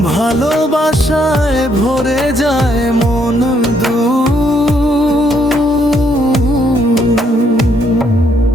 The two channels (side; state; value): both; normal; correlation 0.71